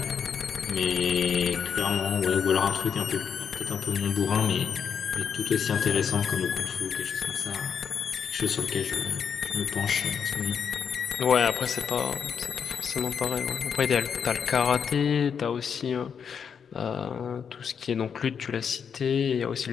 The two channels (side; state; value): right; quieter; 7.0 dB